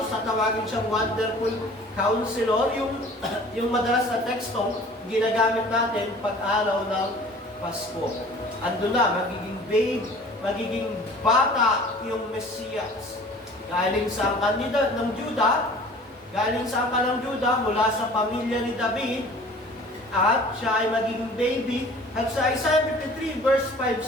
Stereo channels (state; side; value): normal; both; correlation 0.47